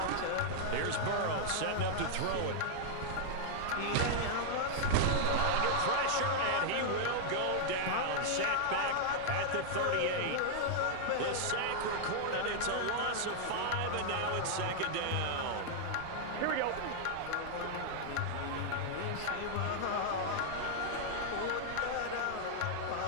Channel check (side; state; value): both; different; correlation -0.01